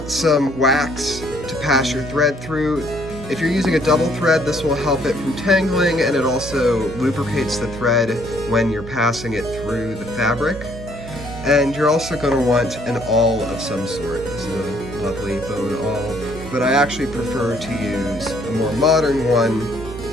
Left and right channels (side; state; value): right; noise; hum, 11 dB below the sound